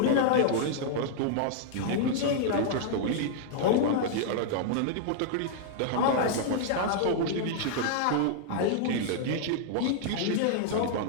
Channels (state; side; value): different; both; correlation -0.01